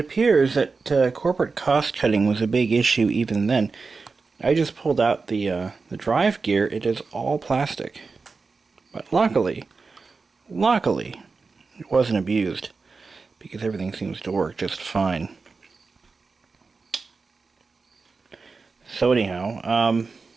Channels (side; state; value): left; quieter; 4.4 dB